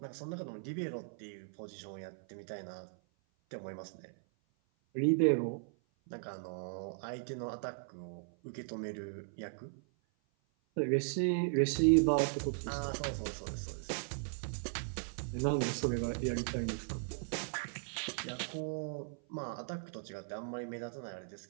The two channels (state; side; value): silent; left; 53 dB below the other